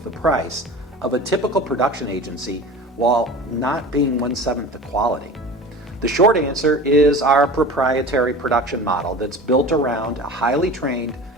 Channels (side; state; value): both; normal; correlation 0.36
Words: the price of a typical production agency while not being 1/7 the quality? The short answer is our proprietary production model that's built around a highly trained,